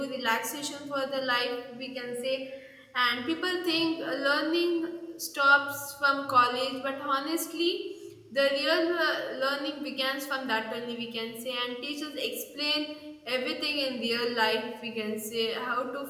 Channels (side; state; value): both; identical; correlation 1.00